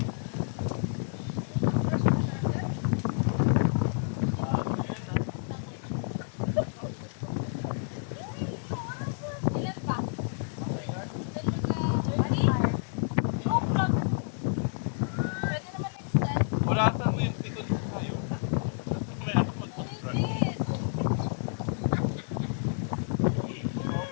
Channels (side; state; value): right; silent; digital silence